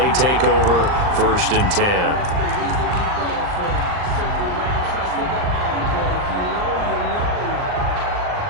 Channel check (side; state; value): left; late; 39 ms